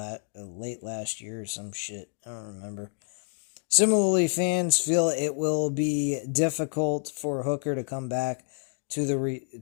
late last year or some shit. I don't remember. Similarly, fans feel it will be difficult for Hooker to come back to the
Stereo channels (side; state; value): right; silent; 59 dB below the other